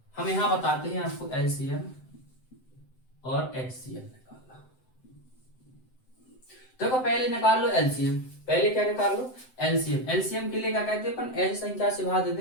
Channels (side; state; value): right; late; 7.8 ms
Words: हम यहाँ बताते हैं आपको LCM और HCF निकालना। देखो पहले निकाल लो LCM। पहले क्या निकाल लो? LCM। LCM के लिए क्या कहते हैं अपन? ऐसी संख्या से भाग